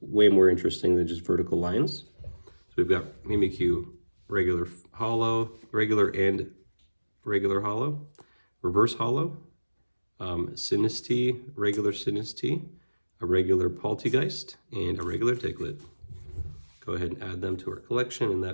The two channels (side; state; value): both; inverted; correlation -1.00